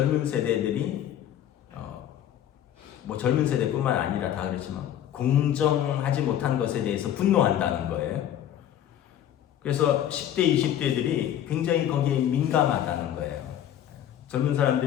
세대들이 젊은 세대뿐만 아니라 다 그렇지만 공정하지 못한 것에 대해서 분노한다는 거예요. 그래서 10대, 20대들이 굉장히 거기에 민감하다는 거예요. 젊은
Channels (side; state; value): right; quieter; 10.9 dB